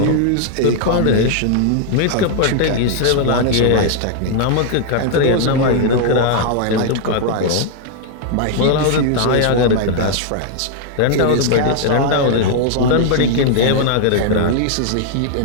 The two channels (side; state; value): both; different; correlation 0.00